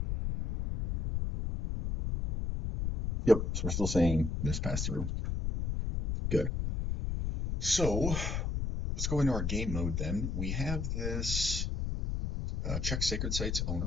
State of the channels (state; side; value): noise; left; rumble, 1 dB below the sound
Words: Yep, so we're still saying this passed through. Good. So let's go into our game mode then. We have this check sacred sites